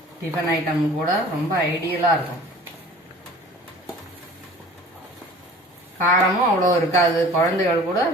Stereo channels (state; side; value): normal; both; correlation 0.45